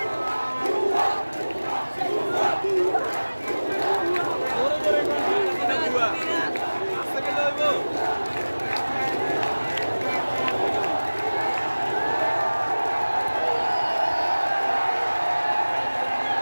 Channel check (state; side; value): inverted; both; correlation -1.00